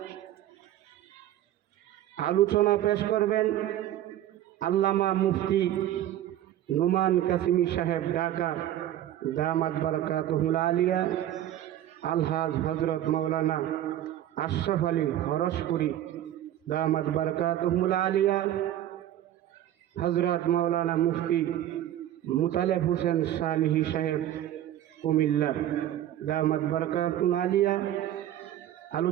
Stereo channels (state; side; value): quieter; left; 12.3 dB